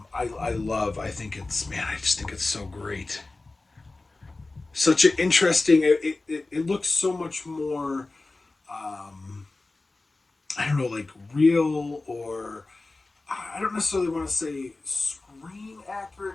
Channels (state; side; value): quieter; right; 3.2 dB